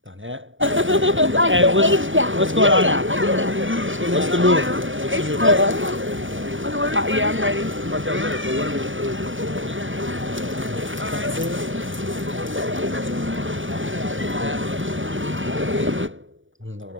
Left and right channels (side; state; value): left; late; 0.57 ms